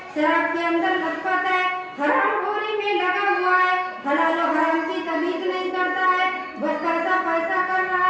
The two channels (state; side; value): identical; both; correlation 1.00